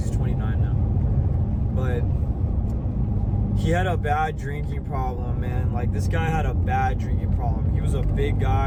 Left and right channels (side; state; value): both; identical; correlation 1.00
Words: 29 now. But he had a bad drinking problem, man. Like, this guy had a bad drinking problem. He was a big